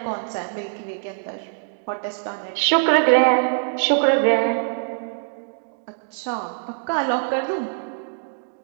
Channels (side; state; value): left; silent; digital silence